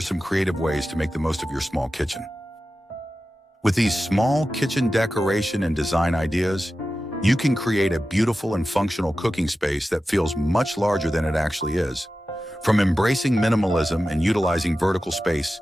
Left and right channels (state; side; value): normal; both; correlation 0.94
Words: creative ways to make the most of your small kitchen. With these small kitchen decoration and design ideas, you can create a beautiful and functional cooking space that feels much larger than it actually is. From embracing minimalism and utilizing vertical space